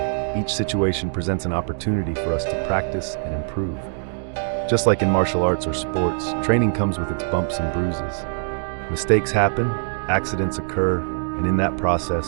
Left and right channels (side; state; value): left; silent; digital silence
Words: each situation presents an opportunity for us to practice and improve. Just like in martial arts or sports, training comes with its bumps and bruises. Mistakes happen, accidents occur, and in that